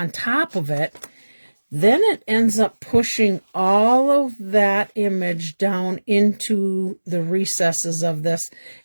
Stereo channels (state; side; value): inverted; both; correlation -1.00